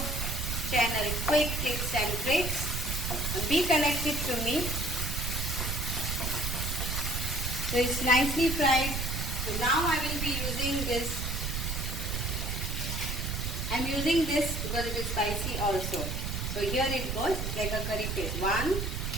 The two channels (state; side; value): noise; right; rumble, 2 dB below the sound